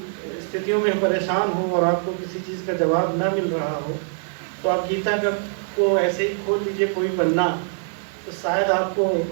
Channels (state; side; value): silent; left; 63 dB below the other